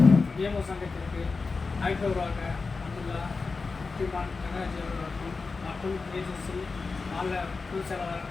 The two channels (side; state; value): right; quieter; 4.3 dB